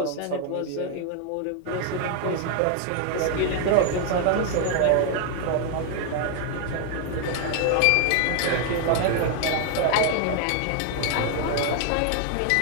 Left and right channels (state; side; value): different; both; correlation 0.00